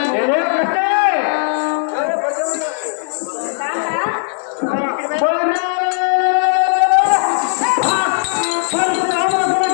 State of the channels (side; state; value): right; silent; 67 dB below the other